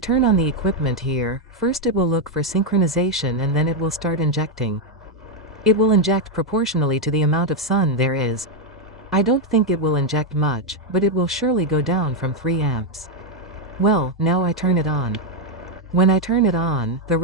on the equipment here. First it will look for synchronization and then it will start injecting. It will inject proportionally to the amount of sun there is. I don't think it will inject much, but it will surely go down from 3 amps. Well, now I turn it on. When I turn it on, the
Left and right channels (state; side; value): normal; both; correlation 0.02